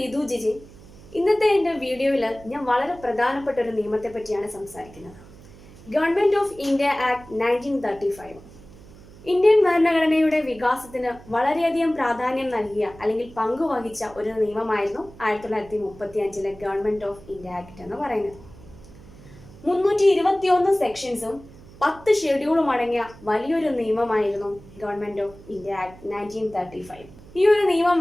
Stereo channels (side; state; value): right; noise; hum, 21 dB below the sound